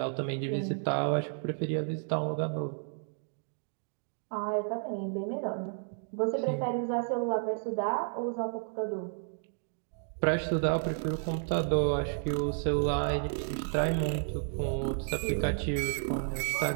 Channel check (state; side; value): silent; left; 56 dB below the other